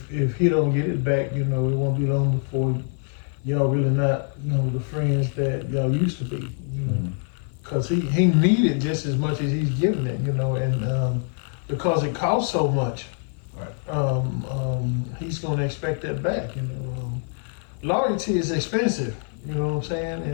if he don't get it back, you know, it won't be long before y'all really not, you know, the friends that y'all used to be, you know, because he needed just as much as he's giving it, you know, and because it costs so much, right. He's gonna expect that back, you know. Loyalty is expensive, you know what I'm saying,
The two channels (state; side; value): silent; right; 56 dB below the other